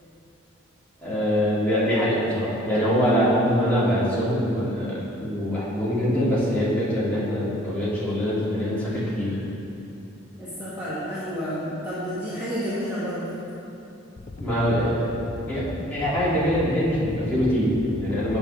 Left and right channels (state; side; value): normal; both; correlation 0.55